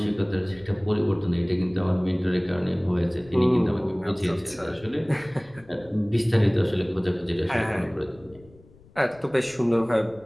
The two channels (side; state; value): left; noise; rumble, 25 dB below the sound